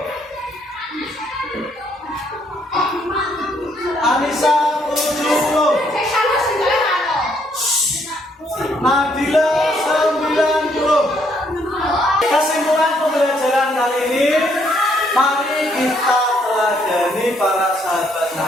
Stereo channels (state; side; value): normal; both; correlation 0.70